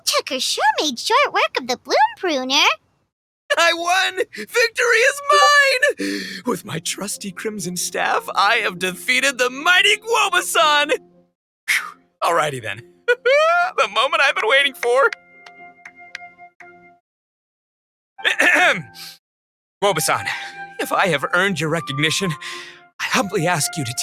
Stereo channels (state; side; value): identical; both; correlation 1.00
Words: sure made short work of the bloom pruner. I won! Victory is mine! With my trusty crimson staff, I have defeated the mighty Guoba-san! Alrighty then. The moment I've been waiting for. Guoba-san, if I have earned your recognition, I humbly ask you to